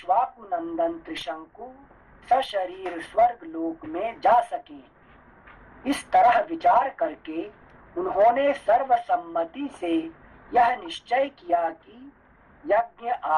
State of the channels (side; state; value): both; identical; correlation 1.00